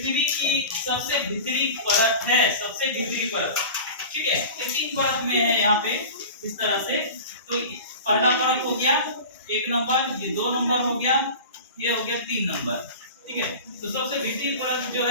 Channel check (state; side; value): inverted; both; correlation -0.34